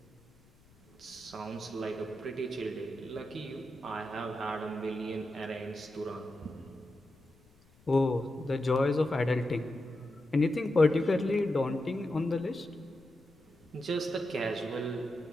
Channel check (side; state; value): left; noise; rumble, 29 dB below the sound